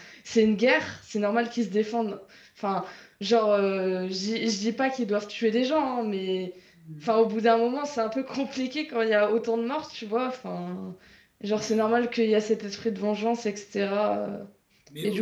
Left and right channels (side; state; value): both; identical; correlation 1.00